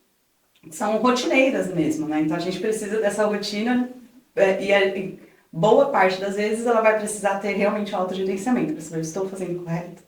rotineiras mesmo, né? Então, a gente precisa dessa rotina e boa parte das vezes ela vai precisar ter realmente um autogerenciamento, para saber, estou fazendo correto,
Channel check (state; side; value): identical; both; correlation 1.00